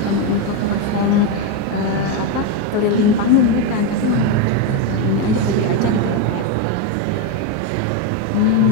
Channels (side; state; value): both; different; correlation 0.04